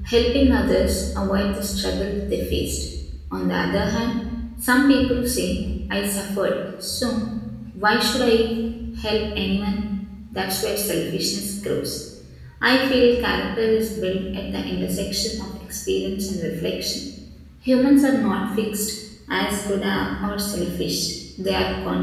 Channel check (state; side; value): identical; both; correlation 1.00